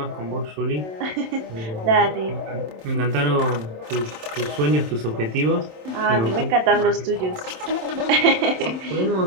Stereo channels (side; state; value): left; late; 27 ms